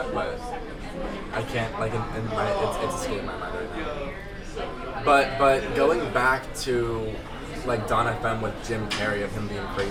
but I can't like in my it's escaping my mind right now. But going back to like Don FM with Jim Carrey of him being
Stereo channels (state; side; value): identical; both; correlation 1.00